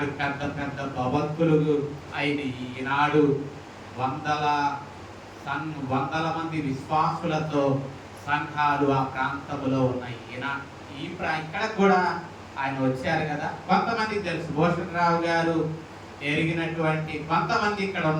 పెద్ద పెద్ద భవంతులు అయిన ఈనాడు వందల మంది విశ్వాసులతో సంఘాలు ఆ ప్రాంతంలో ఉన్నాయి. ఇక్కడ కూడా ఆయన వచ్చారు కదా, కొంతమందికి తెలుసు. భూషణరావు గారు ఎరిగినటువంటి కొంతమంది ఇక్కడ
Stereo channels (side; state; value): both; identical; correlation 1.00